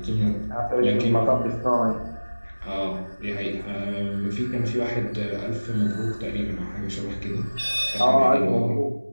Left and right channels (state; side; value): inverted; both; correlation -1.00